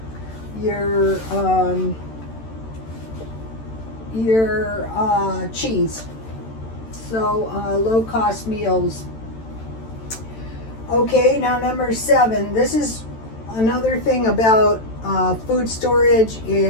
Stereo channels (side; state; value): right; late; 13 ms